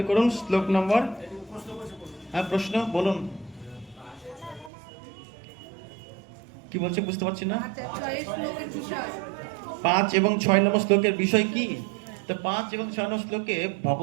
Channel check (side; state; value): left; drops out; at 4.7 s